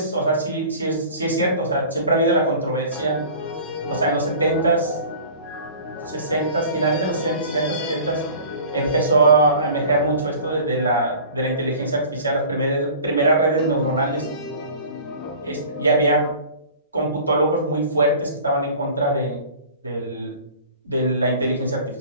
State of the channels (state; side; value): inverted; both; correlation -0.43